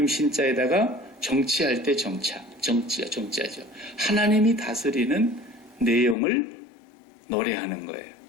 신자에다가 정치할 때 정치하죠. 하나님이 다스리는 내용을 노래하는 거예요.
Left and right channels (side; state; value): right; drops out; at 6.2 s